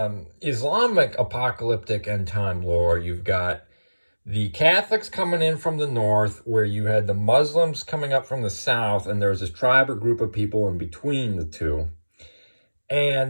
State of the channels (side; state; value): both; inverted; correlation -1.00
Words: Islamic apocalyptic end time lore, you've got the Catholics coming in from the north, where you had the Muslims coming up from the south, and there was this tribe or group of people in between the two.